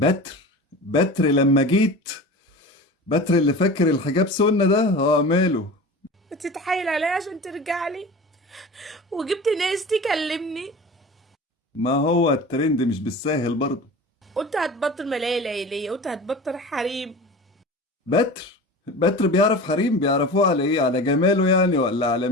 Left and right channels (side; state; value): both; normal; correlation 0.34